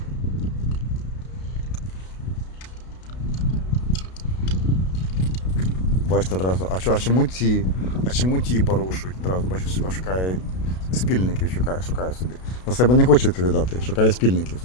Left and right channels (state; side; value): late; right; 32 ms